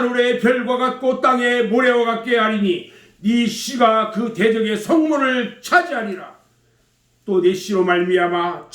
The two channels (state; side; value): identical; both; correlation 1.00